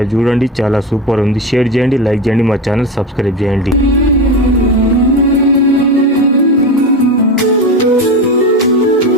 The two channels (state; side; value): normal; both; correlation 0.21